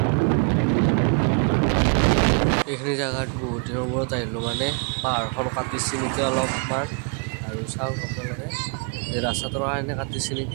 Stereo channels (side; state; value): left; quieter; 38.6 dB